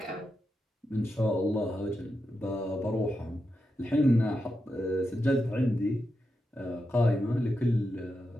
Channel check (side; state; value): both; normal; correlation 0.87